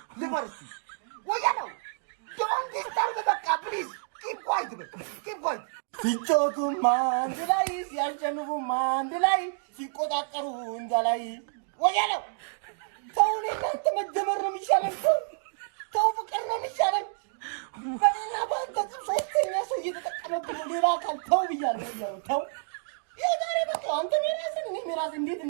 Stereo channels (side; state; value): left; silent; digital silence